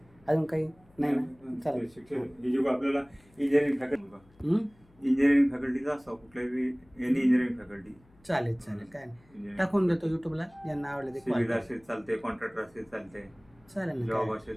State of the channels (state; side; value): noise; left; hum, 29 dB below the sound